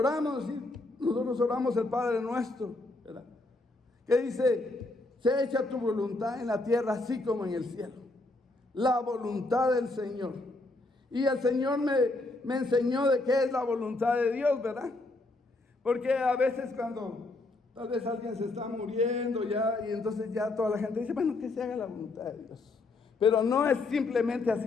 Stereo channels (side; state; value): right; quieter; 3.0 dB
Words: nosotros oramos el Padre nuestro, ¿verdad? Que dice, sea hecha tu voluntad en la tierra así como en el cielo. La voluntad del Señor. Y el Señor me enseñó de qué es la voluntad de Dios, ¿verdad? Porque a veces cuando tal vez alguien se está muriendo ya, y entonces ya toda la gente dice, bueno, que se haga la voluntad de Dios. Pero no es simplemente